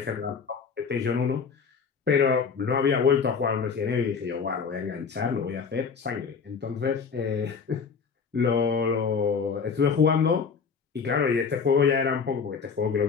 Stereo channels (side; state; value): right; quieter; 5.7 dB